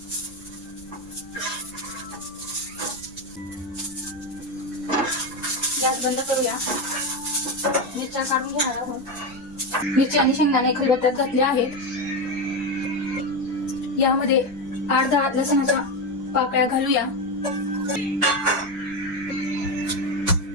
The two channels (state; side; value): noise; right; rumble, 22 dB below the sound